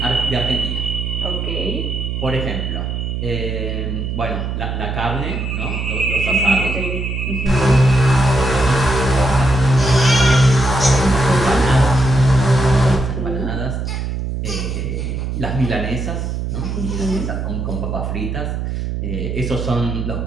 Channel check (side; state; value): right; noise; hum, 3 dB below the sound